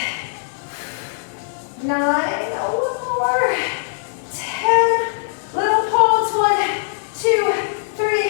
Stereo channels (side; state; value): right; silent; digital silence